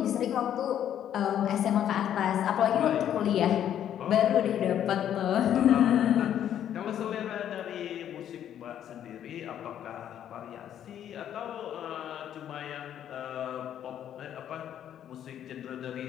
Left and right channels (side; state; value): right; quieter; 10.3 dB